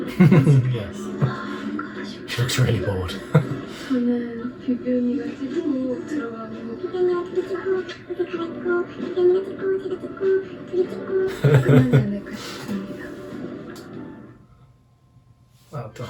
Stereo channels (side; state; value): both; identical; correlation 1.00